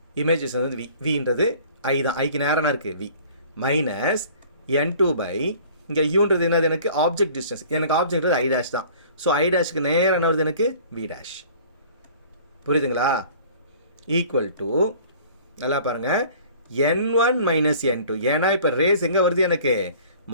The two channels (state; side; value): inverted; both; correlation -0.49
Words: இமேஜ் வந்து Vன்றது ஐ தான். ஐக்கு நேராக இருக்குது V மைனஸ் N2 பை இங்கே யூன்றது என்னது, எனக்கு ஆப்ஜெக்ட் டிஸ்டன்ஸ். எனக்கு ஆப்ஜெக்ட் ஐ டேஷ் தான். ஸோ ஐ டேஷுக்கு நேராக என்ன வருது, எனக்கு V டேஷ். புரியுதுங்களா? ஈக்குவல் டு நல்லா பாருங்கள், N1 மைனஸ் N2. ஏன்னா இப்போ ரேஸ் எங்கே வருது, எனக்கு